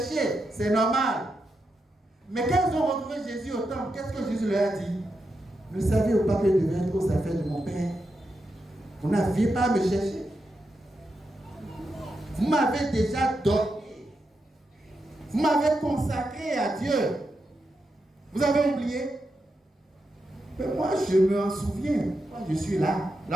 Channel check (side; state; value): both; normal; correlation 0.86